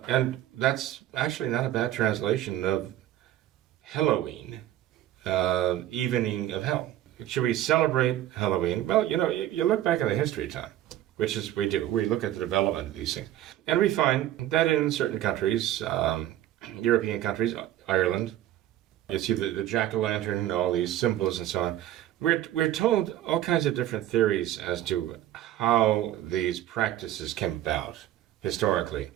And that's actually not a bad translation of Halloween, evening of hell. Should we celebrate Halloween? Well, you look back at the history of time, which is we do. We look at the development of these things. And we find that in certain countries, European countries, Ireland, you see the jack-o'-lantern, all these symbols and so on. We're told all kinds of different theories as to how these practices came about historically.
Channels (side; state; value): left; quieter; 13.1 dB